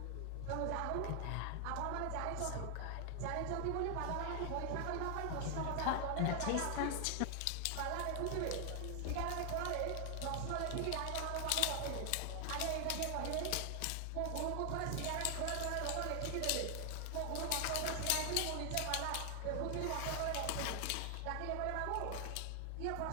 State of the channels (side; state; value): both; different; correlation 0.00